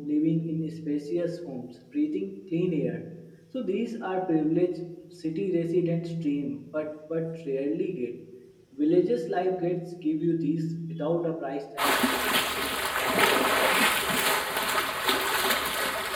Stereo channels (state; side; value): identical; both; correlation 1.00